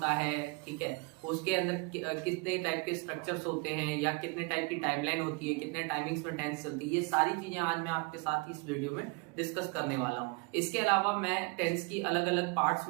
है। ठीक है, उसके अंदर कितने टाइप के स्ट्रक्चर्स होते हैं या कितने टाइप की टाइमलाइन होती है, कितने टाइमिंग्स में टेंस चलती है, ये सारी चीजें आज मैं आपके साथ इस वीडियो में डिस्कस करने वाला हूँ। इसके अलावा मैं टेंस की अलग अलग पार्ट्स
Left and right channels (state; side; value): quieter; left; 29.8 dB